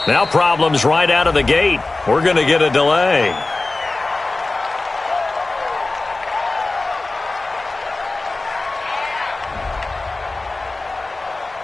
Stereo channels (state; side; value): quieter; right; 3.2 dB